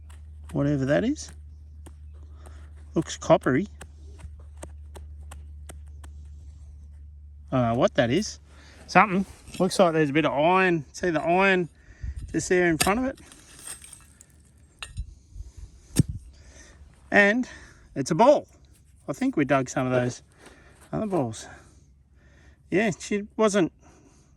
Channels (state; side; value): identical; both; correlation 1.00